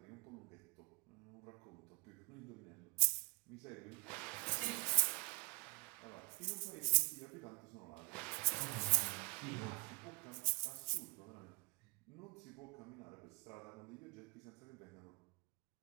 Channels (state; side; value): quieter; left; 33.6 dB